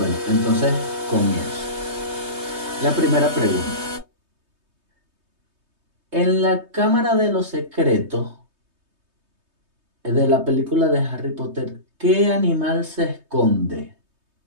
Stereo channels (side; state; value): left; late; 3.2 ms